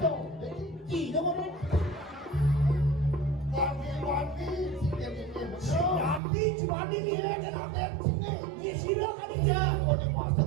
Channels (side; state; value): left; drops out; at 6.2 s